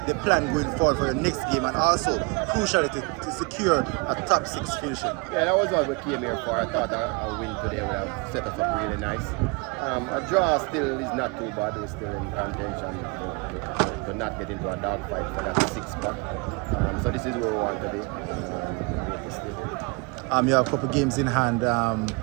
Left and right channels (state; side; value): quieter; left; 28.4 dB